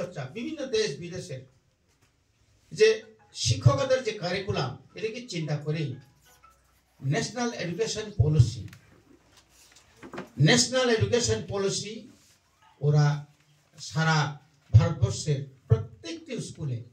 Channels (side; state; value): both; identical; correlation 1.00